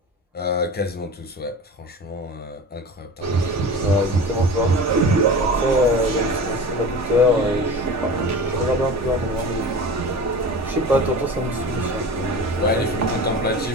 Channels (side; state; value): both; normal; correlation 0.33